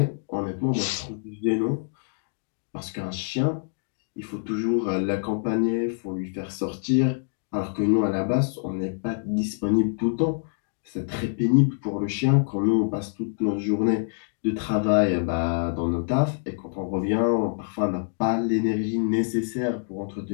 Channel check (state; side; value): silent; right; digital silence